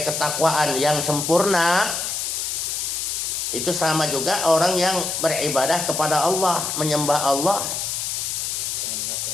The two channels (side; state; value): left; noise; hiss, 2 dB below the sound